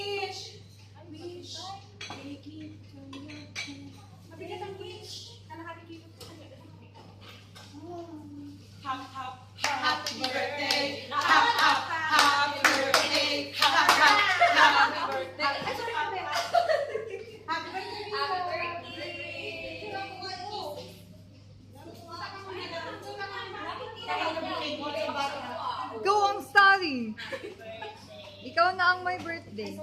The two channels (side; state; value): both; identical; correlation 1.00